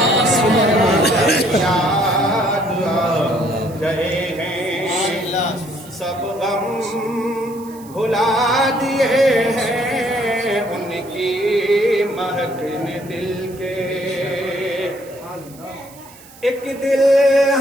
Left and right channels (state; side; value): noise; right; hiss, 22 dB below the sound